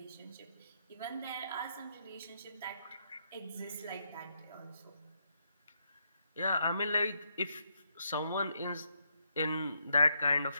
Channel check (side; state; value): both; inverted; correlation -0.78